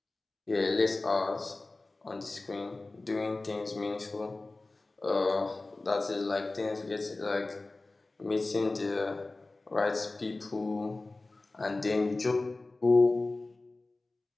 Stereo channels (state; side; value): quieter; right; 3.2 dB